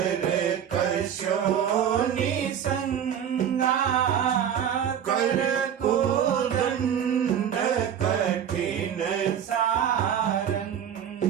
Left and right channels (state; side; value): quieter; left; 8.9 dB